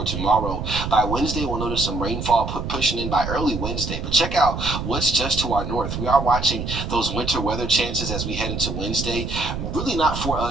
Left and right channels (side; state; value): right; noise; rumble, 5 dB below the sound